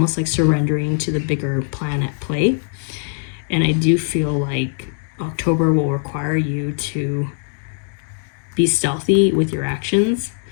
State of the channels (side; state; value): right; silent; digital silence